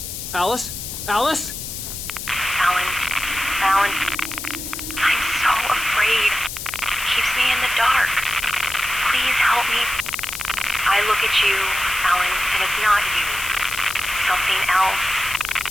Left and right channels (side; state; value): left; noise; hiss, 7 dB below the sound